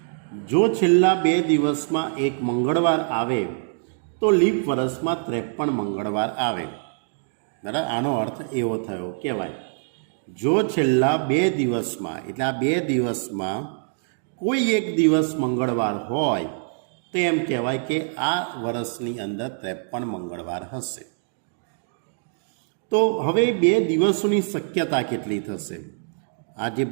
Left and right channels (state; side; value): silent; left; digital silence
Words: જો છેલ્લા 2 દિવસમાં એક મંગળવાર આવે તો લીપ વર્ષમાં 53 મંગળવાર આવે, બરાબર. આનો અર્થ એવો થયો કહેવાય, જો છેલ્લા 2 દિવસમાં એટલે આ 2 દિવસમાં કોઈ એક દિવસ મંગળવાર હોય તો એમ કહેવાય કે આ વર્ષની અંદર 53 મંગળવાર હશે. તો હવે 2 દિવસોની શક્યતા કેટલી થશે? આ જે